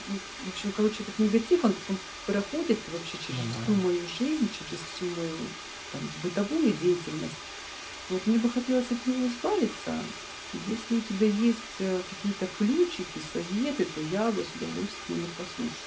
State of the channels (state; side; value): identical; both; correlation 1.00